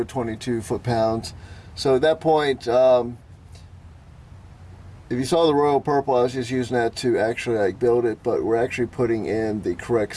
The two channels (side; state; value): both; identical; correlation 1.00